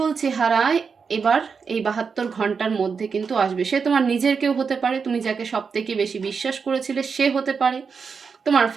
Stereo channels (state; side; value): quieter; left; 5.6 dB